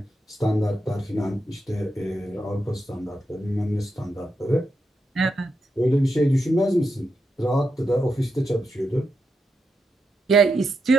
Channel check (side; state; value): both; normal; correlation 0.85